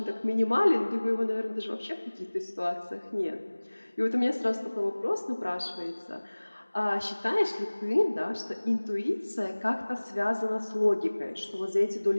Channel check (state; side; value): inverted; both; correlation -1.00